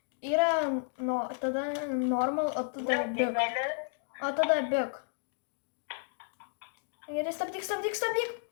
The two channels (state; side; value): silent; right; 56 dB below the other